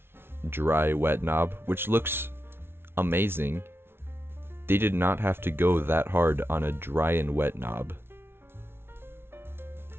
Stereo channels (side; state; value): left; late; 0.12 ms